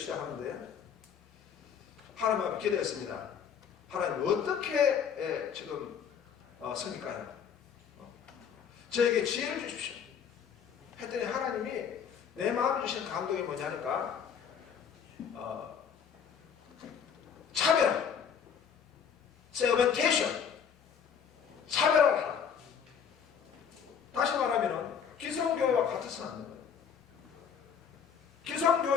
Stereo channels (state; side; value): quieter; right; 7.4 dB